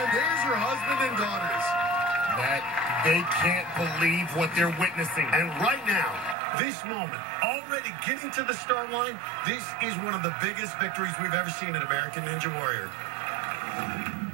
there's her husband and daughters. That they can't believe what they're witnessing. And right now, this moment, already getting to the start line, this is one of the biggest victories we've ever seen in American Ninja Warrior.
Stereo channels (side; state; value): left; drops out; at 6.4 s